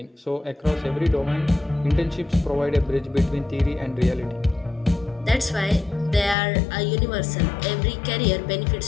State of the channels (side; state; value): right; drops out; at 6.4 s